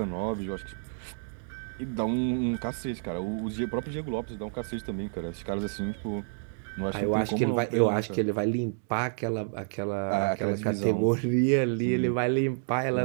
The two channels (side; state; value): left; silent; digital silence